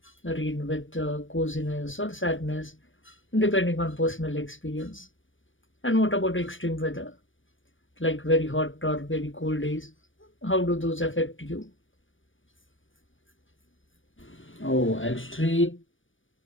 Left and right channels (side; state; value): right; late; 0.57 ms